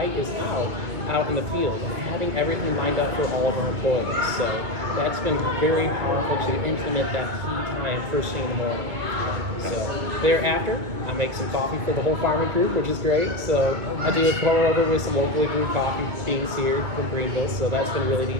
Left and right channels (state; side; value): late; left; 2.2 ms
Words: is out in the field, and having everything lined up for all of our employees. So that's been very powerful to implement that key time first thing in the morning. So thereafter, I make some coffee for the whole farming group, which is great. So I do a pour over with some locally brewed coffee beans here from Greenville. So that's been really